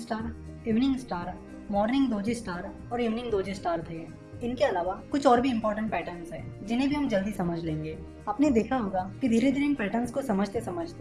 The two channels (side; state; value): both; identical; correlation 1.00